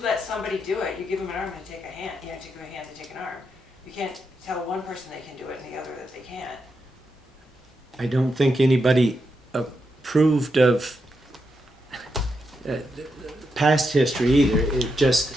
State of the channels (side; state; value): both; normal; correlation 0.84